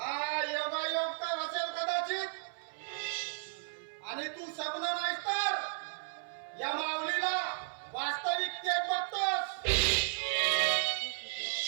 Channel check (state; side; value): silent; left; 55 dB below the other